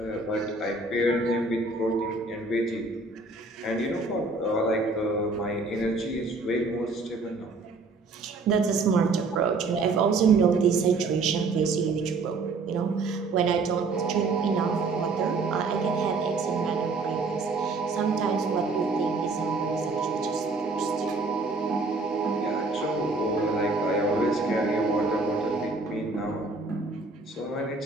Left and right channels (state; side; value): quieter; left; 3.6 dB